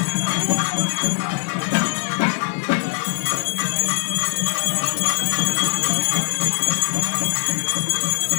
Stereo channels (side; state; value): right; silent; 65 dB below the other